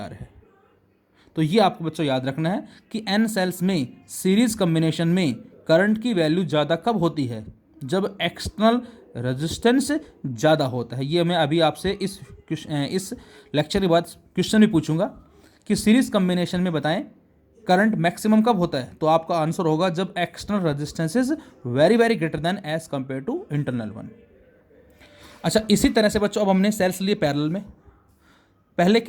है। तो ये आपको बच्चों याद रखना है कि एन सेल्स में सीरीज कम्बिनेशन में करंट की वैल्यू ज़्यादा कब होती है, जब एक्सटर्नल रेजिस्टेंस ज़्यादा होता है। ये मैं अभी आपसे इस लेक्चर के बाद क्वेश्चन भी पूछूंगा कि सीरीज कम्बिनेशन में बताएं करंट मैक्सिमम कब होता है, तो आपका आंसर होगा जब external resistance is very very greater than as compare to internal one. अच्छा, इसी तरह से बच्चों अब हमने सेल्स लिए पैरेलल में। पहले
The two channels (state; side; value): identical; both; correlation 1.00